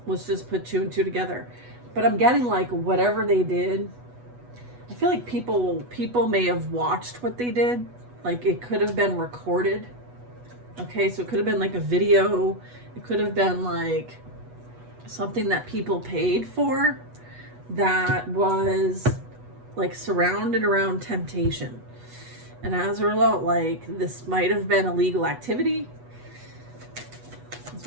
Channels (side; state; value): left; late; 8.2 ms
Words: let's just put two and two together. But I'm getting like whatever they did, I feel like people may have watched what they did. Like it could have been recorded. Okay, so it could have been like a video. It could have been like something that people paid for that was like surrounded around temptation. And as a result, like this might have been illegal activity.